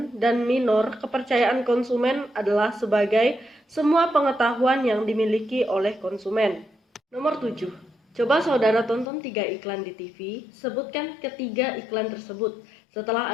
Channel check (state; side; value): drops out; right; at 9.1 s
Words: dan Minor, kepercayaan konsumen adalah sebagai semua pengetahuan yang dimiliki oleh konsumen. Nomor 7. Coba saudara tonton 3 iklan di TV, sebutkan ketiga iklan tersebut. Setelah